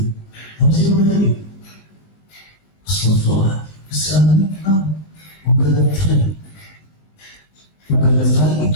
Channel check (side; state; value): right; late; 19 ms